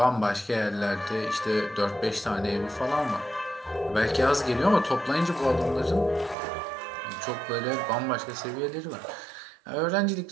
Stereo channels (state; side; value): drops out; left; at 6.4 s